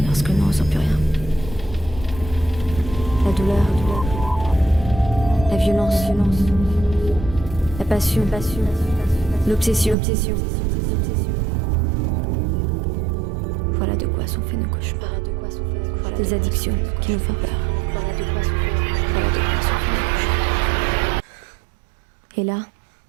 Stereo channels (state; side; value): drops out; left; at 10.0 s